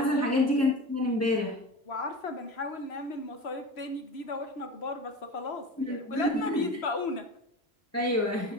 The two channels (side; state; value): both; normal; correlation 0.31